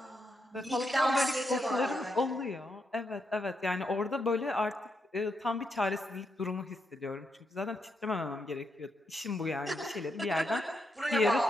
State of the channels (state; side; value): normal; both; correlation 0.81